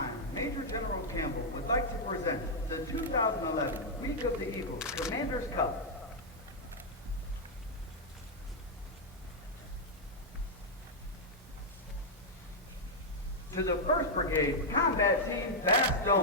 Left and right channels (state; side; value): normal; both; correlation -0.04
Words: Major General Campbell would like to present the 2011 Week of the Eagles Commander's Cup. To the 1st Brigade Combat Team